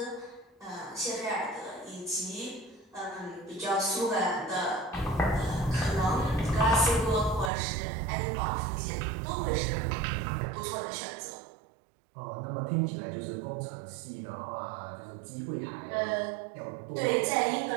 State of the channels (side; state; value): left; drops out; at 7.5 s